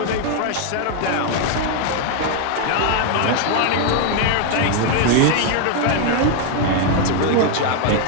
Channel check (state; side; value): different; both; correlation 0.00